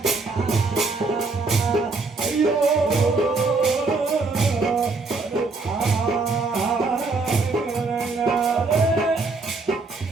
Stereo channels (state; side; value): quieter; left; 3.8 dB